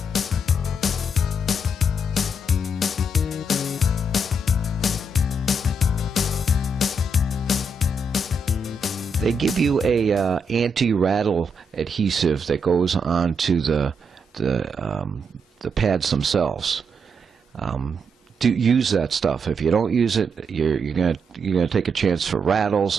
They give you a anti-rattle adhesive that goes onto the pads themselves. Do use that stuff. If you don't use it, you're gonna take a chance for rattles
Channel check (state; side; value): normal; both; correlation 0.79